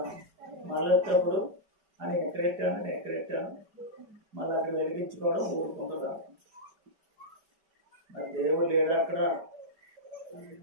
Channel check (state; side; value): late; left; 4.9 ms